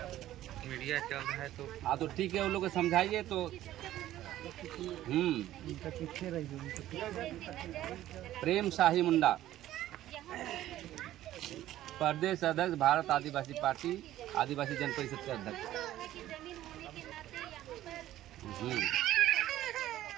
मीडिया चल रहा है तो। हाँ तो ठीक है, वो लोग को समझाइए तो। प्रेम शाही मुंडा, प्रदेश अध्यक्ष भारत आदिवासी पार्टी, आदिवासी जन परिषद के अध्यक्ष।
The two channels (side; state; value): left; quieter; 13.7 dB